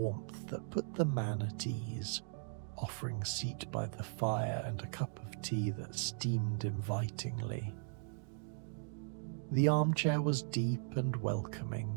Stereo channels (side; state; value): left; silent; digital silence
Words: that put the man at ease, offering seat by the fire and a cup of tea that steamed invitingly. The armchair was deep and